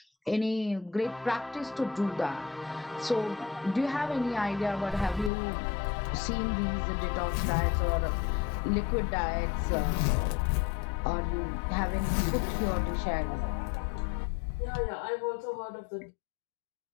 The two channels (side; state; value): right; drops out; at 5.3 s